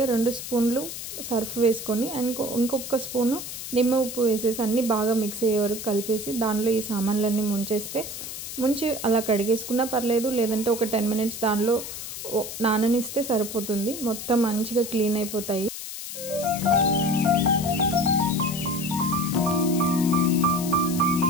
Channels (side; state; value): left; noise; hiss, 8 dB below the sound